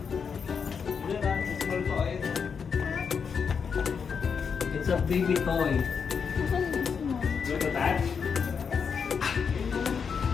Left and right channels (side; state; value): right; quieter; 6.2 dB